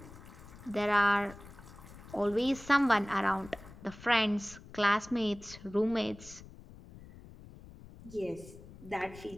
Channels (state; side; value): noise; left; rumble, 18 dB below the sound